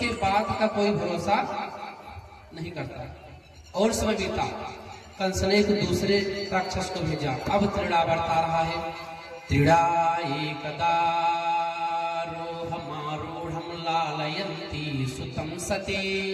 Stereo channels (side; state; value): both; identical; correlation 1.00